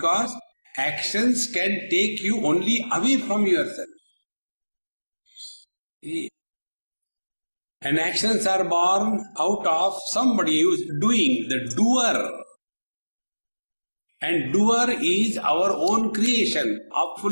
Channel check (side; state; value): both; inverted; correlation -1.00